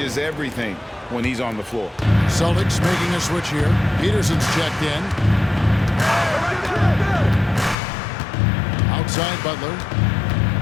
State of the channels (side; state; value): right; drops out; at 7.8 s